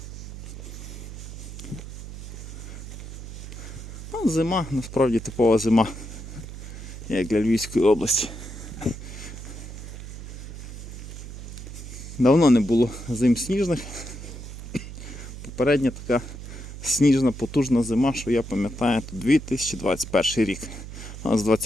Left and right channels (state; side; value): noise; right; hum, 11 dB below the sound